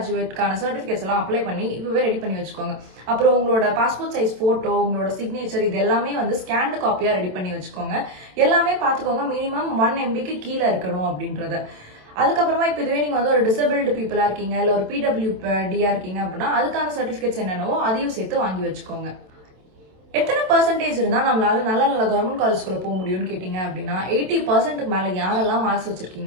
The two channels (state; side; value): late; left; 27 ms